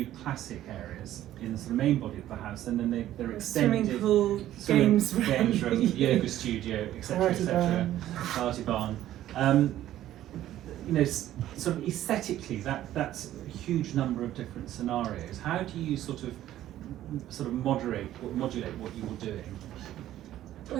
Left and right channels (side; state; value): left; quieter; 13.1 dB